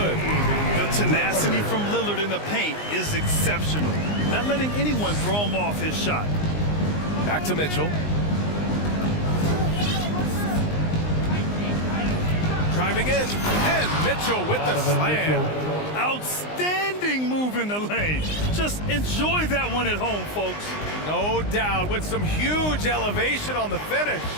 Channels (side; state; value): right; late; 19 ms